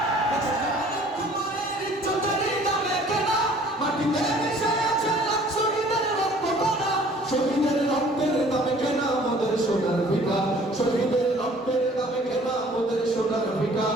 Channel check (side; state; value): both; normal; correlation 0.53